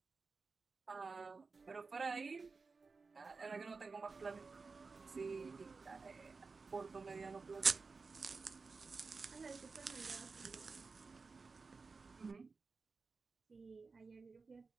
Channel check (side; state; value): left; quieter; 4.4 dB